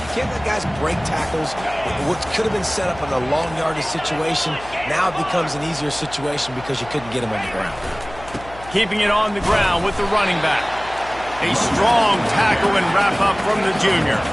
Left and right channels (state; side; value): noise; left; hum, 17 dB below the sound